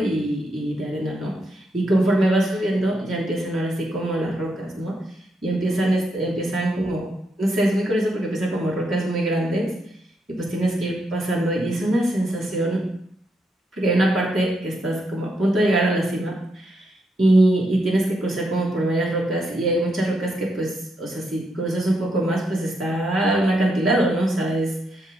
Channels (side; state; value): both; normal; correlation 0.79